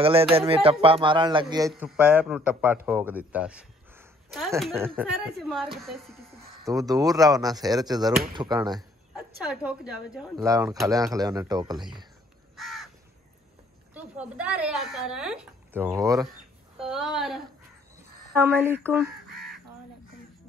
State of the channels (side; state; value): both; normal; correlation 0.62